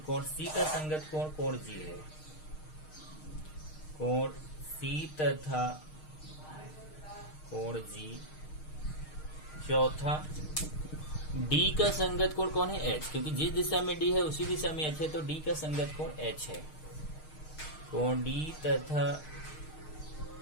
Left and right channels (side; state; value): right; late; 6.5 ms